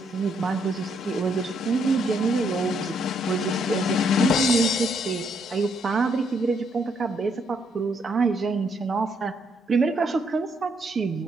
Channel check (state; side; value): normal; both; correlation 0.73